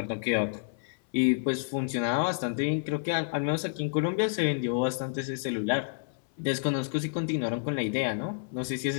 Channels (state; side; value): silent; right; 58 dB below the other